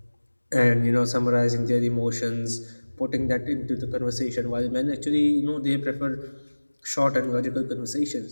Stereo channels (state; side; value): inverted; both; correlation -1.00